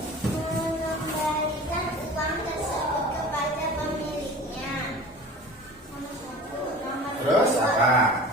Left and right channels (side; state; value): both; normal; correlation 0.39